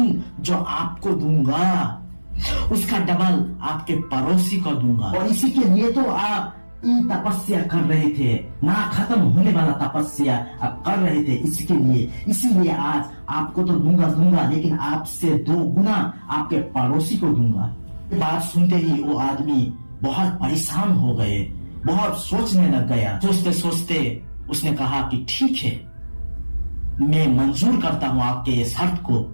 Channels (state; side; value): inverted; both; correlation -1.00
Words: जो आपको दूंगा उसका डबल आपके पड़ोसी को दूंगा। और इसी के लिए तो आप तपस्या कर रहे थे, ना खत्म होने वाला तपस्या आप कर रहे थे, इसके लिए, इसीलिए आज आपको तो दूंगा, लेकिन आपसे 2 गुना आपके पड़ोसी को दूंगा। बात सुनते ही वो आदमी बहुत परेशान हो गए, बहुत सोचने लग गया। सोचते सोचते उसने कहा कि ठीक है, मैं मंजूर करता हूं आपके ये शर्त को।